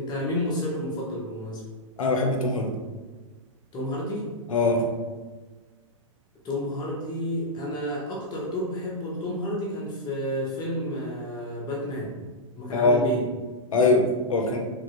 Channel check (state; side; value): normal; both; correlation -0.07